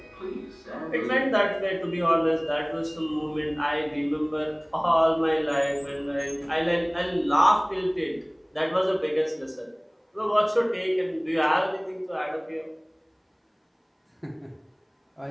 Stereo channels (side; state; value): both; identical; correlation 1.00